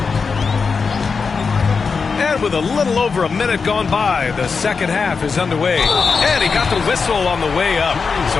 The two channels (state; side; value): quieter; right; 5.1 dB